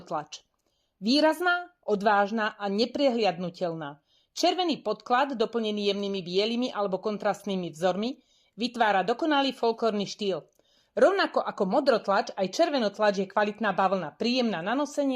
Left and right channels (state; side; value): identical; both; correlation 1.00